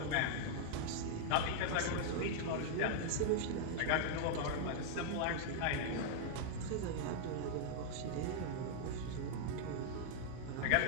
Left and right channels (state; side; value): different; both; correlation -0.01